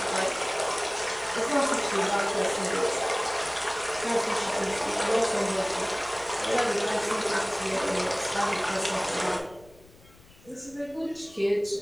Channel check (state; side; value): noise; left; rumble, 25 dB below the sound